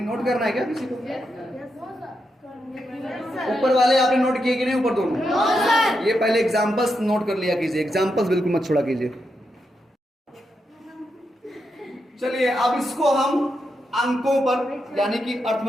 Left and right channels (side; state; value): both; normal; correlation 0.84